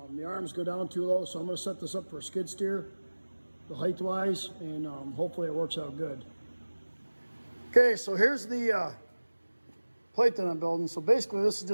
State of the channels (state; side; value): inverted; both; correlation -1.00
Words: arms go down too low, so I'm going to set this up for a skid steer, the height-wise, and hopefully it works out good. Okay, so here's the plate that I'm building. So basically this is